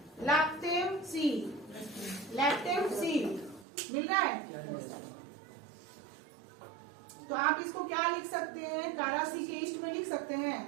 लैक्टेम सी, लैक्टेम सी मिल रहा है। तो आप इसको क्या लिख सकते हैं? कारा सी के ईस्ट में लिख सकते हैं,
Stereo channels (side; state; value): left; drops out; at 3.7 s